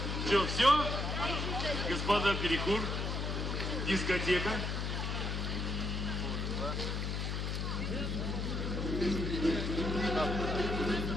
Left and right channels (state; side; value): noise; left; hum, 1 dB below the sound